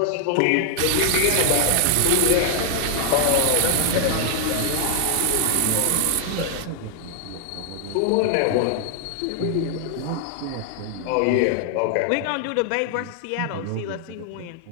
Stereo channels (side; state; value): both; different; correlation 0.00